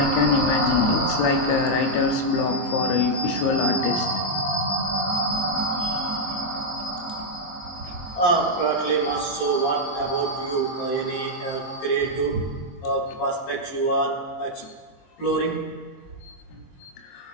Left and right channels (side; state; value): right; late; 23 ms